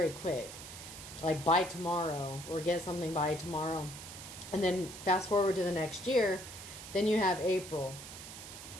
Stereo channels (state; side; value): noise; right; hiss, 12 dB below the sound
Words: quick, like by tomorrow, or get something by tomorrow. And then fast forward to the next year, then you have April,